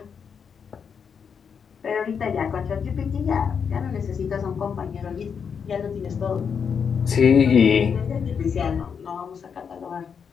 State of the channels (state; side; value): quieter; right; 6.7 dB